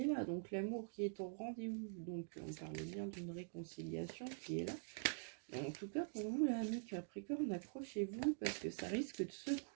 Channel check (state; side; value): silent; left; digital silence